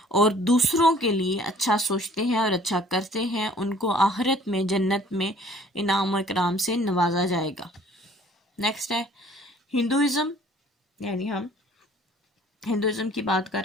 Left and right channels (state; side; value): normal; both; correlation 0.55